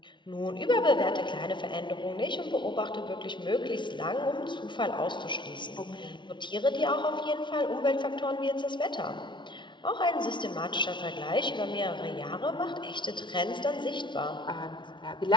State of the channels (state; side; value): late; right; 0.23 ms